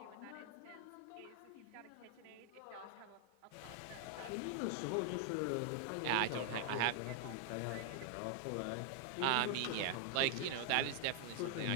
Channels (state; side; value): different; both; correlation 0.00